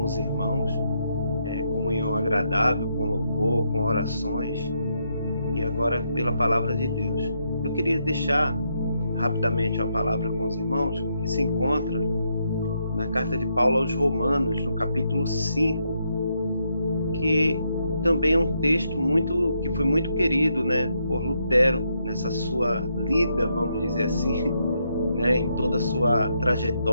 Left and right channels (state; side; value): inverted; both; correlation -0.79